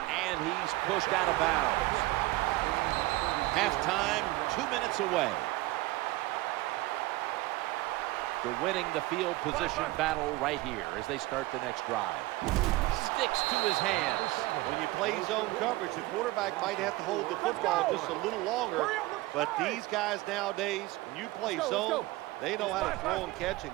And he's pushed out of bounds. Halftime, 2 minutes away. They're winning the field position battle right here as they start the next drive. Sticks to his hands. When you play zone coverage, the quarterback might have to hold the football just a little longer. But these guys nowadays, when you play zone, they know how to throw and catch and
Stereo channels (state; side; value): quieter; left; 19.5 dB